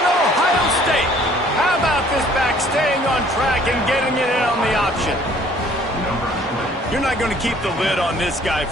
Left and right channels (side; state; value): both; normal; correlation 0.57